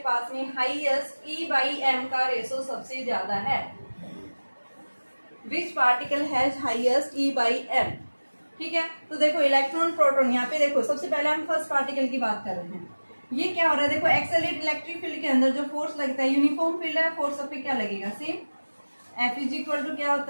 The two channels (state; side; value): inverted; both; correlation -1.00